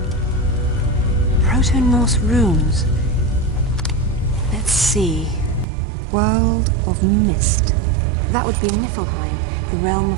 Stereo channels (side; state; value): left; drops out; at 5.7 s